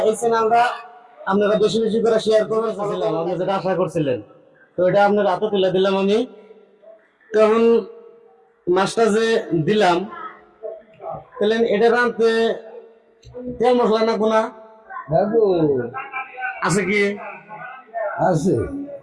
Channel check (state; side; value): identical; both; correlation 1.00